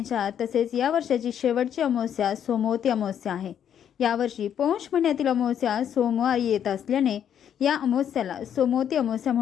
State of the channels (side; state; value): right; quieter; 9.2 dB